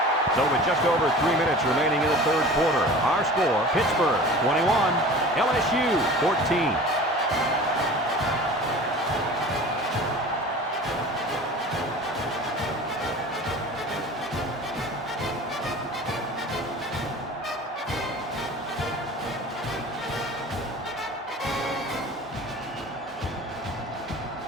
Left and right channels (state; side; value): normal; both; correlation 0.40